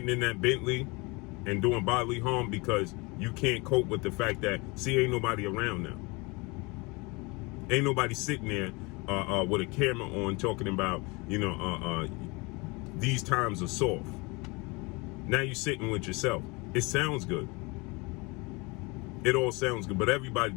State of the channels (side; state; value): right; quieter; 26.8 dB